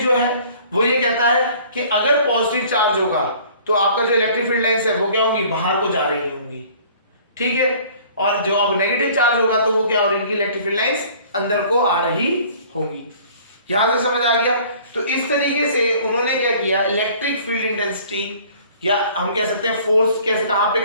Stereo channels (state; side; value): inverted; both; correlation -0.52